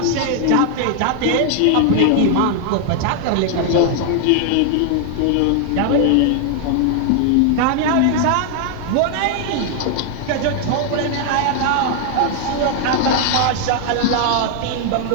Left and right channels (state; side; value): different; both; correlation 0.00